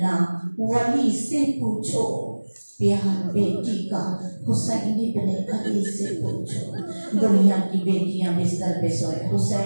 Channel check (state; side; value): inverted; both; correlation -1.00